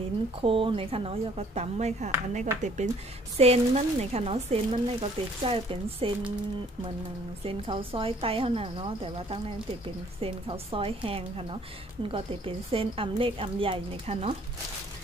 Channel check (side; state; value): both; normal; correlation 0.59